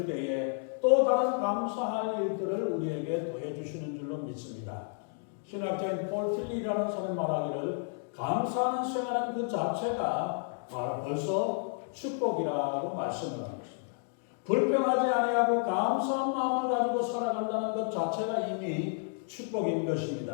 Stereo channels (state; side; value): silent; right; 56 dB below the other